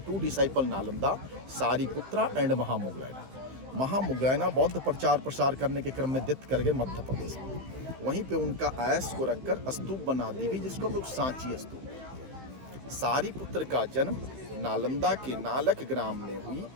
2 डिसाइपल नालंदा, सारिपुत्रा एंड महामुगलैना। महामुगलैना बौद्ध प्रचार प्रसार करने के क्रम में डेथ कर गए मध्य प्रदेश में। वहीं पे उनका आयस को रखकर स्तूप बना दी गई, जिसको हम लोग सांची स्तूप कहते हैं। सारीपुत्र का जन्म नालंदा के नालक ग्राम में हुई।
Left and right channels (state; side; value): late; left; 15 ms